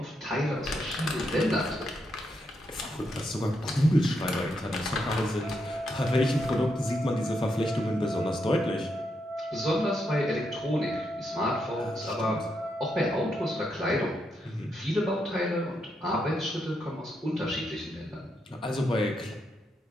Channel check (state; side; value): normal; both; correlation 0.81